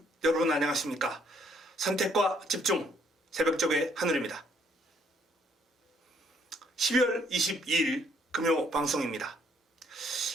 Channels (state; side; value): normal; both; correlation 0.66